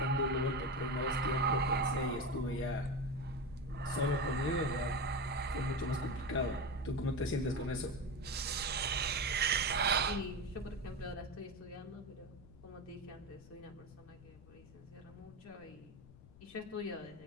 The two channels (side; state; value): left; noise; rumble, 20 dB below the sound